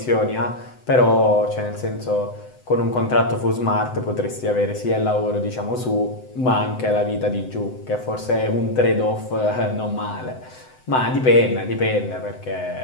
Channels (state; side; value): late; right; 7.9 ms